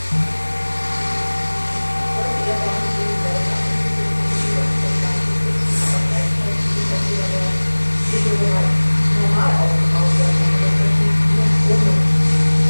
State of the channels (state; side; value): inverted; both; correlation -1.00